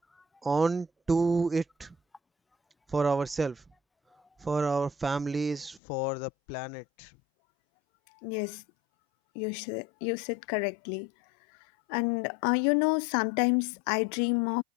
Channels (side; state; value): right; drops out; at 5.8 s